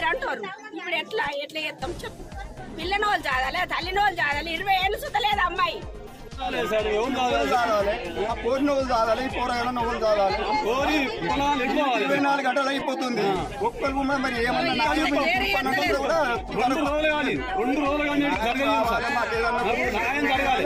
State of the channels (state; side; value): identical; both; correlation 1.00